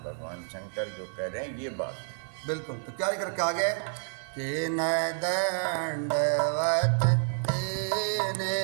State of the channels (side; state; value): left; silent; digital silence